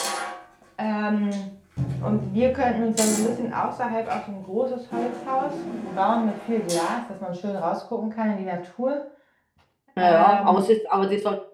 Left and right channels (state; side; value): identical; both; correlation 1.00